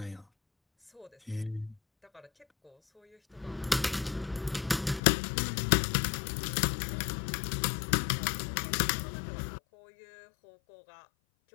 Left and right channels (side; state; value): right; drops out; at 5.0 s